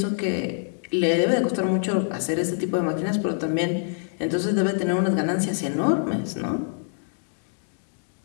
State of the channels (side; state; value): right; silent; digital silence